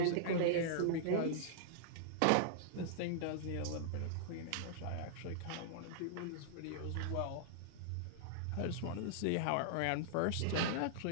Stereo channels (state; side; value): different; both; correlation -0.02